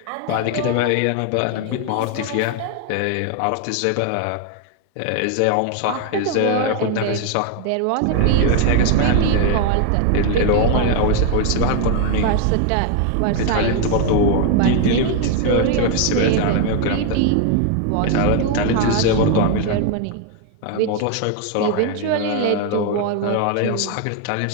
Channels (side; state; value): both; different; correlation 0.01